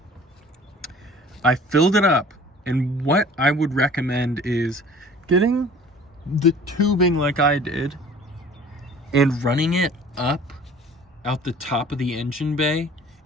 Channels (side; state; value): both; normal; correlation 0.48